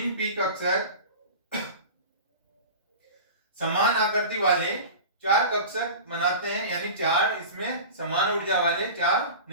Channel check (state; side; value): inverted; both; correlation -0.33